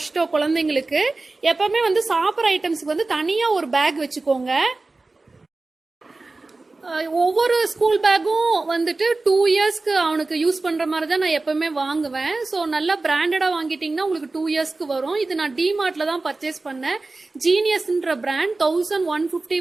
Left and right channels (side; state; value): left; quieter; 3.4 dB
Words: குழந்தைங்களுக்கு. எப்பவுமே வந்து சாப்பிட்ற ஐட்டம்ஸ்க்கு வந்து தனியா ஒரு பேக் வச்சுக்கோங்க. ஒவ்வொரு ஸ்கூல் பேக்கும் வந்துட்டு 2 இயர்ஸ்க்கு அவனுக்கு யூஸ் பண்ற மாதிரி தான் நான் எப்பவுமே வாங்குவேன். ஸோ நல்லா பிராண்டடா வாங்கிட்டீங்கன்னா உங்களுக்கு 2 இயர்ஸ்க்கு வரும். இது நான் டிமார்ட்ல தான் பர்ச்சேஸ் பண்ணேன். ஜீனியஸ்ன்ற பிராண்ட் 1150